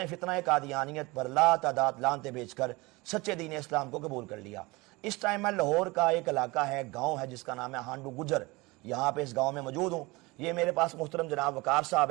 فتنہ قادیانیت پر لا تعداد لعنتیں بیچ کر سچے دین اسلام کو قبول کر لیا۔ اس ٹائم میں لاہور کا ایک علاقہ ہے، گاؤں ہے جس کا نام ہے ہانڈو گجر، یہاں پہ اس گاؤں میں موجود ہوں۔ یہ میرے پاس محترم جناب وقار صاحب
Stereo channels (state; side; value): quieter; left; 23.4 dB